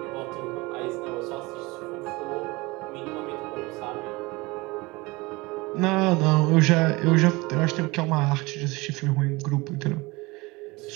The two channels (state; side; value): quieter; left; 23.5 dB